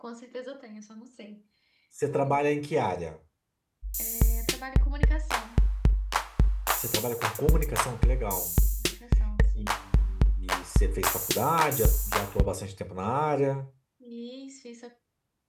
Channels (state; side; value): identical; both; correlation 1.00